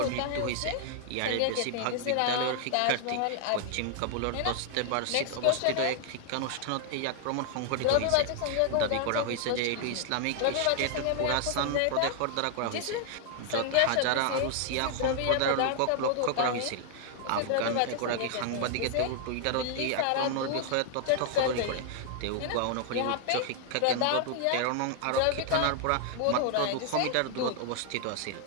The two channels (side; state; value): both; different; correlation 0.00